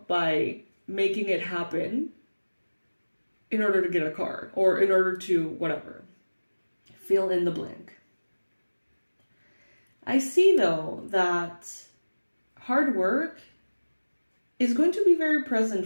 by making it happen in order to get a car or in order to whatever. Fill in the blank. I see though that hard work is going to be very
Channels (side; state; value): both; inverted; correlation -1.00